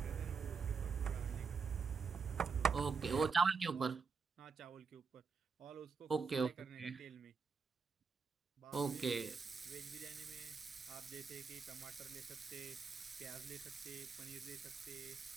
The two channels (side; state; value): left; quieter; 5.3 dB